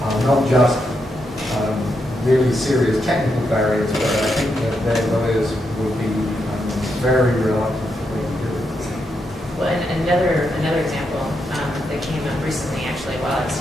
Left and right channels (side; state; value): both; normal; correlation 0.82